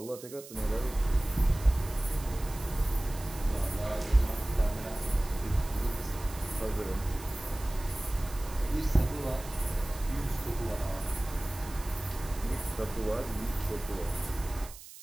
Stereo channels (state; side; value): noise; right; hiss, 16 dB below the sound